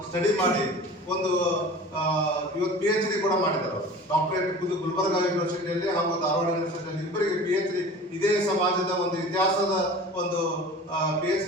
ಸ್ಟಡಿ ಮಾಡಿ ಒಂದು ಇವತ್ತು PhD ಕೂಡ ಮಾಡಿದ್ದಾರೆ. ಡಾಕ್ಟರೇಟ್ ಗುಲ್ಬರ್ಗಾ ಯೂನಿವರ್ಸಿಟಿಯಲ್ಲಿ ಹಾಗೂ ಧಾರವಾಡ ಯೂನಿವರ್ಸಿಟಿಯಲ್ಲಿ ಇಬ್ಬರಿಗೆ PhD ಇದೇ ಸಮಾಜದ ಒಂದು ಇತಿಹಾಸದ ಒಂದು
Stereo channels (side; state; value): both; normal; correlation 0.39